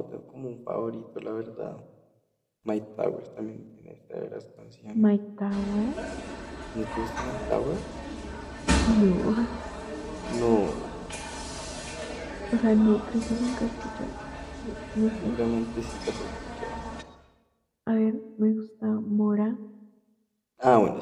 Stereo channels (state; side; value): identical; both; correlation 1.00